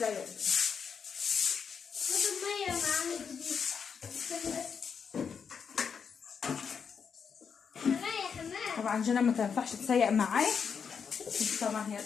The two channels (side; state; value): right; quieter; 6.5 dB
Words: المية معانا جديد. طبعا جنى ما تنفعش تسيق معايا، طبعا هي